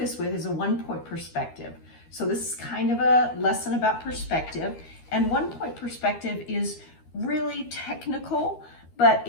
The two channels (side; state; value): right; late; 12 ms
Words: with is a 1-point perspective. So this is kind of a lesson about perspective. And 1-point perspective is really technical, but